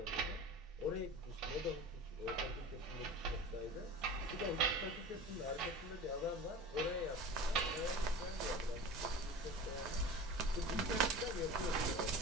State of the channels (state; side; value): normal; both; correlation 0.35